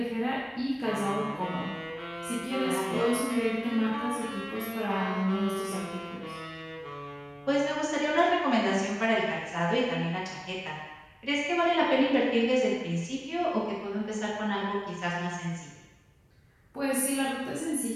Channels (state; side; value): identical; both; correlation 1.00